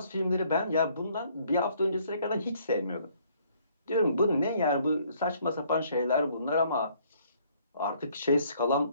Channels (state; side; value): inverted; both; correlation -0.63